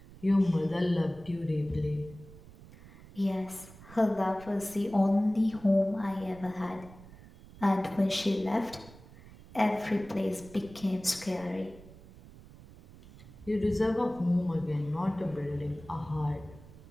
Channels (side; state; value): right; noise; rumble, 20 dB below the sound